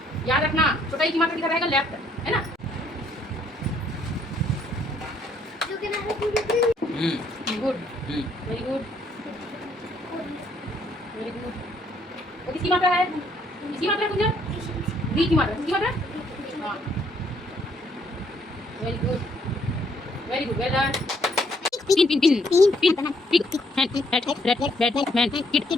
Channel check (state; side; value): normal; both; correlation 0.68